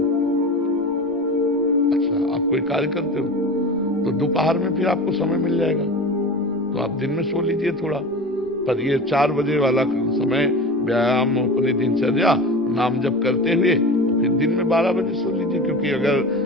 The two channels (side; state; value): right; noise; rumble, 30 dB below the sound